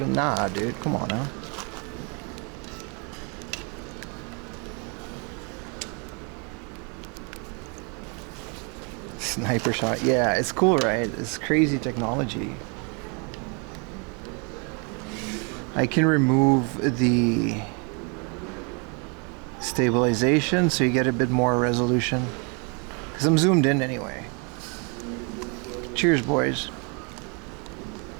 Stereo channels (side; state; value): left; quieter; 34.6 dB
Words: Nah, dude, come on now. Sniper shot. Yeah, it's cool, right? It's crazy technology. I can remove the stabilization so you get a bit more resolution. Because I'm zoomed in anyway. Cheers, boys.